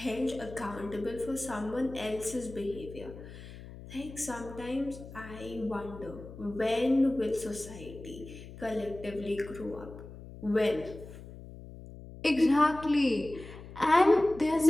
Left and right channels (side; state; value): left; noise; hum, 14 dB below the sound